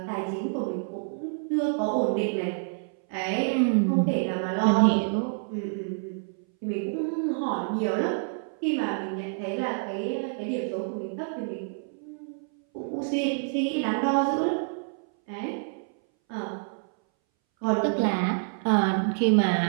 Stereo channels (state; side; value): silent; left; 60 dB below the other